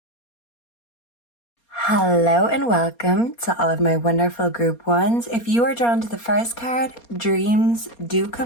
Hello and welcome to all of my wonderful group ones. If you are drawn to the first card, dreams do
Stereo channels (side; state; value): right; late; 4.3 ms